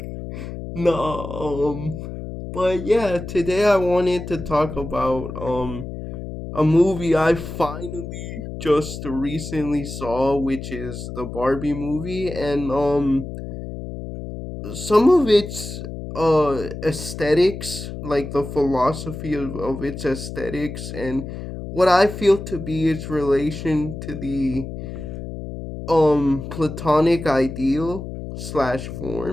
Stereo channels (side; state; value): left; noise; hum, 9 dB below the sound